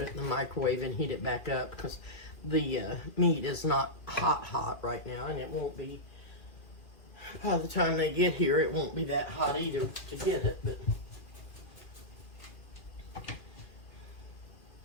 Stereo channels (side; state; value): right; late; 2.4 ms